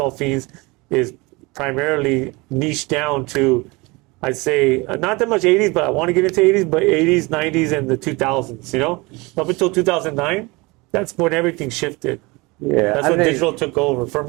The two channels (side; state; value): left; quieter; 24.8 dB